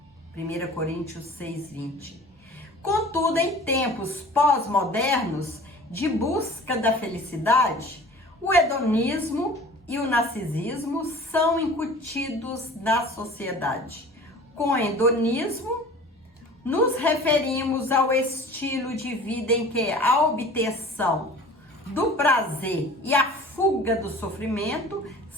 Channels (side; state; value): both; normal; correlation 0.43